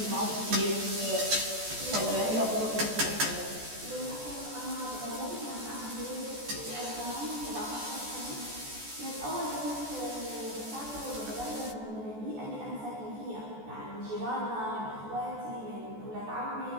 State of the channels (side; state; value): left; late; 14 ms